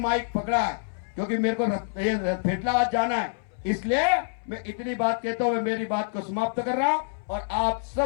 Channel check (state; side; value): silent; right; 61 dB below the other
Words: पकड़ा है, क्योंकि मेरे को पेटलावाद जाना है। इसलिए मैं इतनी बात कहता हूँ, मैं मेरी बात को समाप्त कर रहा हूँ और आप